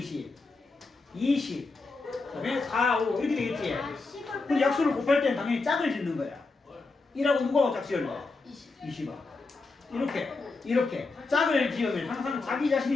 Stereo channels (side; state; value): right; quieter; 3.8 dB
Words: 20, 그다음에 4, 5 이렇게 되겠지. 그럼 약수를 곱할 때는 당연히 짝을 짓는 거야. 1하고 누구하고 짝 지을래? 20아. 이렇게 짝을 지으면 항상 자기